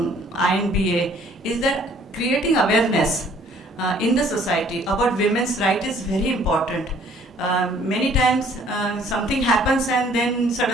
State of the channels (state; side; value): normal; both; correlation 0.58